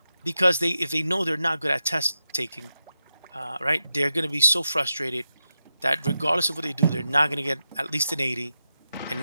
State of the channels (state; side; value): inverted; both; correlation -0.89